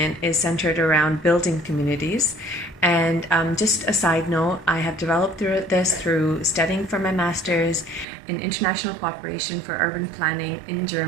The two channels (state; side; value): drops out; left; at 8.1 s